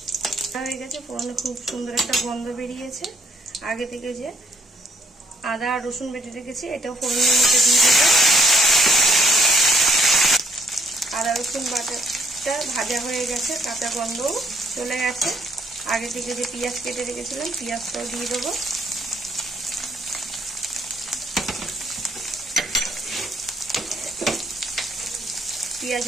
হয়ে গেছে, ফোড়নে খুব সুন্দর একটা গন্ধ বেরিয়েছে। আগে থেকে যে আদা আর রসুন বেটে রেখেছি এটাও ফোড়নের মধ্যে দিয়ে দেবো। আদা রসুন বাটাটা ভাজা হয়ে গেছে, কাঁচা গন্ধও চলে গেছে। আগে থেকে যে পেঁয়াজ কেটে রেখেছিলাম পেঁয়াজটাও দিয়ে দেবো।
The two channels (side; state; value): both; normal; correlation 0.67